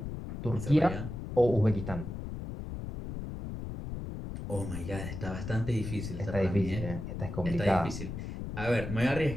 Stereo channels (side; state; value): left; noise; rumble, 7 dB below the sound